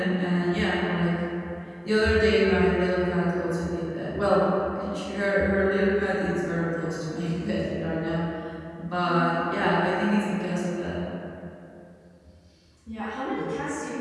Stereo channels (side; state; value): both; identical; correlation 1.00